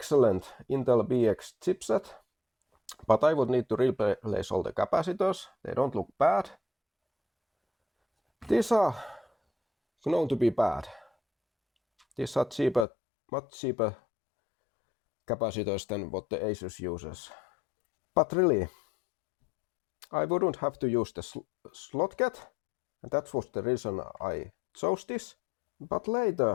Intel BX chipset, but I would need to replace all the capacitors. They don't look bad. These are known to be bad. These are cheaper, much cheaper capacitors than what the Asus uses. But really, I wouldn't have to use the Slotket, and that was the reason I chose this. But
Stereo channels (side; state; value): right; drops out; at 12.9 s